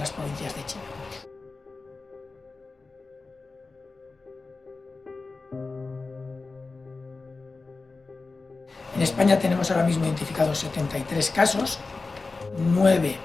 provincias de China. En España tenemos ahora mismo identificados 73 casos, 9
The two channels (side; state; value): right; quieter; 3.8 dB